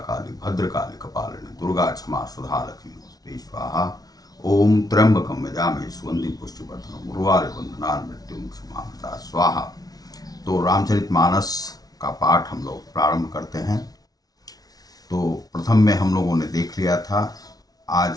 काली भद्रकाली कपालिनी दुर्गा क्षमा सुधा लक्ष्मी नमस्ते स्वाहा। ओम त्र्यंबकम यजामहे सुगंधिं पुष्टिवर्धनम् उर्वारुकं बंधनान् मृत्युमुक्षमामृता स्वाहा। तो रामचरितमानस का पाठ हम लोग प्रारंभ करते हैं। तो प्रथम में हम लोगों ने देख लिया था। आज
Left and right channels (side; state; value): right; late; 0.18 ms